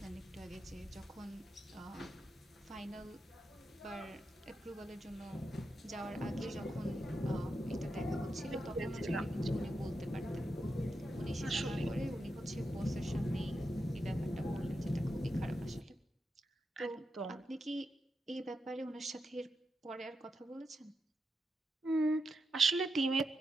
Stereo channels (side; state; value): both; normal; correlation 0.87